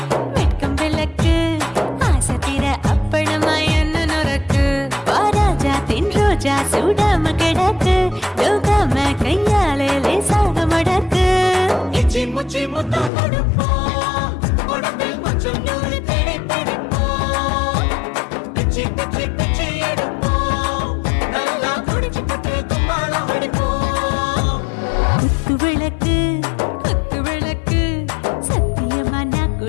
வெட்கம் விளக்கு ஆசை தீர அப்பளமா என்ன நுறக்கு வாராஜா தின் ரோஜா சூடாம கிடக்கு தூக்காம கையாலே லேசாக மடக்கு இச்சி முச்சி முத்தம் கொடுப்போம் உடம்பில் கொஞ்சம் நூறு தேடி பிடிப்போம் பிச்சி பிச்சி பிச்சி எடுப்போம் நல்லா குடிச்சு பட்டு கும்பாலம் அடிப்போம் குத்து விளக்கு குத்து விளக்கு சத்தியமான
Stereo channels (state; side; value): drops out; right; at 13.1 s